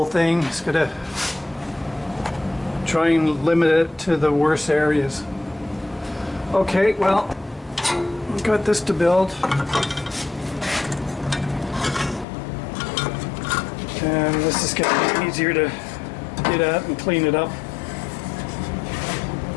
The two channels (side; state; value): right; drops out; at 12.2 s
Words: thing. It's going to try and limit it to the worst areas. Okay, well, we've got this to build. And this is going to be easier to get at and clean it up.